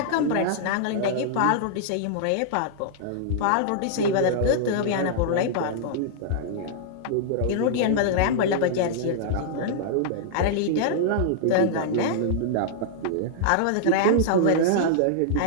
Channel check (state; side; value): different; both; correlation -0.01